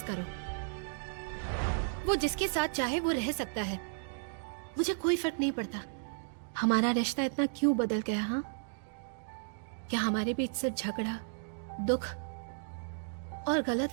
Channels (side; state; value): left; silent; digital silence